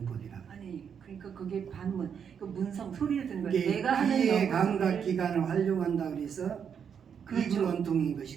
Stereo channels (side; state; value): left; quieter; 7.4 dB